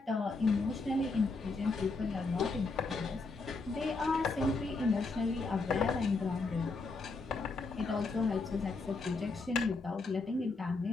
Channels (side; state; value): right; quieter; 3.8 dB